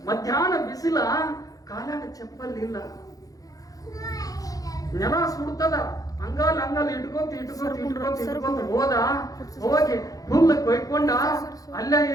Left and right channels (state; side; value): late; right; 0.17 ms